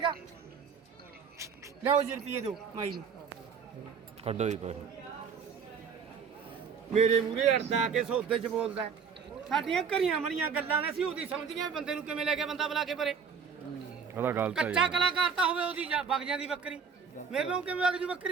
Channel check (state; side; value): quieter; left; 6.3 dB